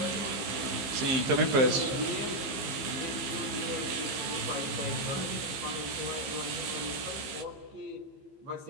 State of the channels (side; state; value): left; late; 15 ms